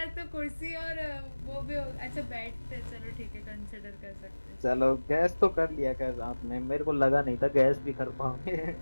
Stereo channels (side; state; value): both; inverted; correlation -1.00